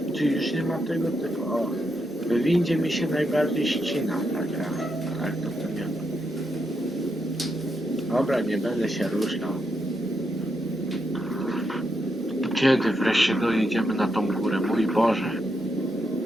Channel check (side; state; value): both; normal; correlation 0.82